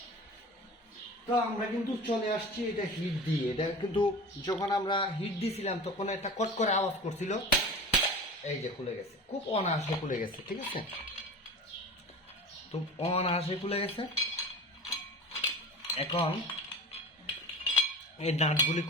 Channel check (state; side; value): normal; both; correlation 0.34